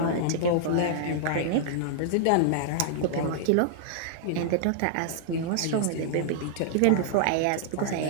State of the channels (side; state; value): both; different; correlation -0.01